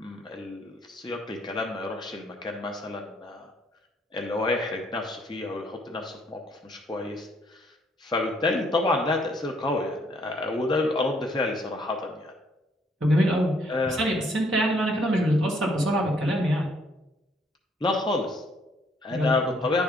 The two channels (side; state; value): both; normal; correlation 0.67